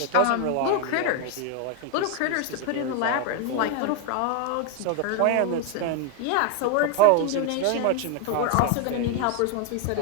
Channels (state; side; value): different; both; correlation 0.01